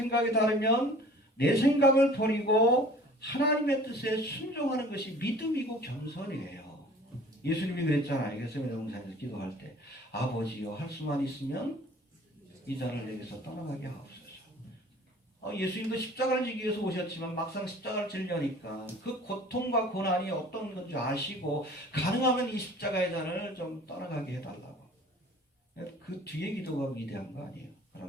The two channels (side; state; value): both; normal; correlation 0.47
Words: 다르면 내 생각을 버리고 하나님의 뜻에 순종하는 것이 믿음이고 겸손이에요. 예수님이 그랬잖아요. 겟세마네 동산에서 기도할 때 아버지여 할 수만 있으면 이 잔을 내게서 떠나가게 하옵소서. 예수님도 십자가를 지기 위해서 오셨지만 막상 십자가를 지려니까 그 고통과 고난이 어떤 건지 아시고 가능하면 이 십자가의 잔을 좀 떠나가게 해달라고. 그 뒤에 기도가 위대한 거 아니에요.